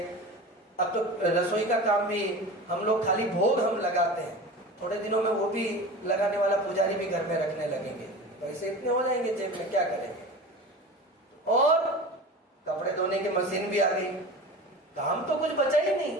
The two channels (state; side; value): normal; both; correlation 0.33